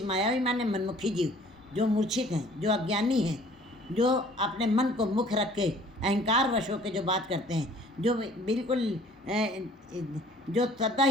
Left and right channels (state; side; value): normal; both; correlation 0.54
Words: मायावी माने मनमुखी जीव, जो मूर्छित हैं, जो अज्ञानी हैं, जो अपने मन को मुख रख के अहंकार वश होकर जो बात करते हैं, जो बिल्कुल जो सदा